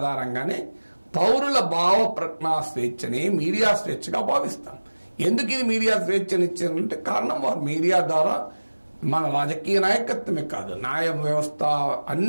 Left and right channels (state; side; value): inverted; both; correlation -1.00